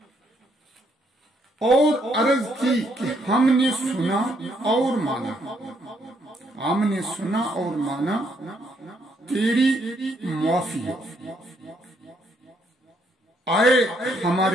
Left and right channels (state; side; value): normal; both; correlation 0.72